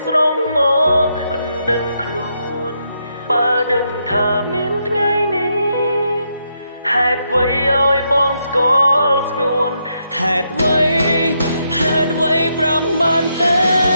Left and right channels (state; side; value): inverted; both; correlation -0.79